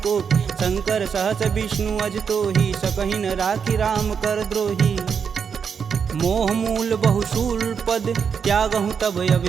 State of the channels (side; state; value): left; quieter; 6.6 dB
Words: शंकर सहस विष्णु अज तोहि, सकहि न राखी राम कर द्रोही। मोह मूल बहुशूल पद, त्यागहु तब